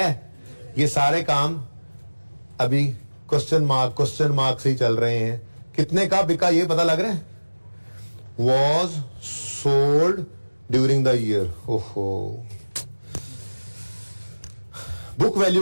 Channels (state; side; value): inverted; both; correlation -1.00